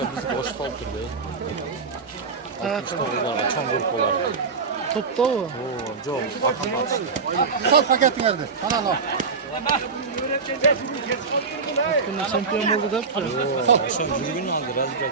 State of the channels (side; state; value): left; quieter; 4.9 dB